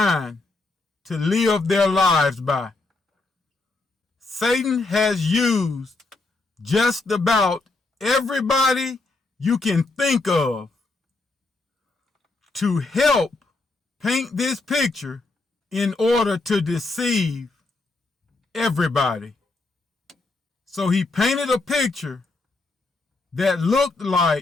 to live their lives by. Satan has used just about everybody you can think of to help paint this picture in order to deceive everybody. So he painted a picture that looked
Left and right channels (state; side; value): quieter; right; 3.4 dB